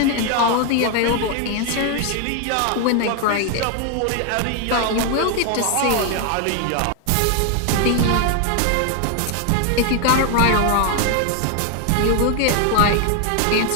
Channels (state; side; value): different; both; correlation 0.01